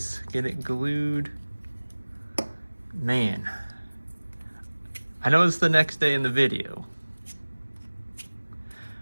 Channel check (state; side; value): inverted; both; correlation -1.00